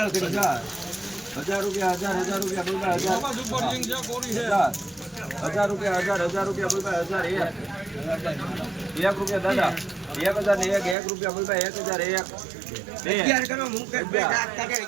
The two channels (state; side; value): drops out; left; at 11.0 s